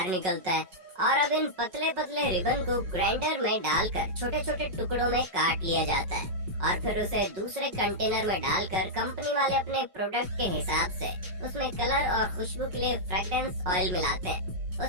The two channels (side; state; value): left; late; 5.4 ms